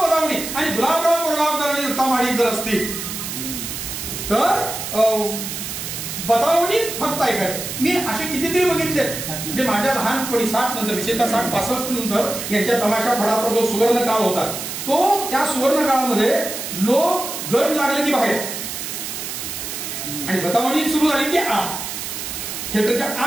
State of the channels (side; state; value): right; noise; hiss, 6 dB below the sound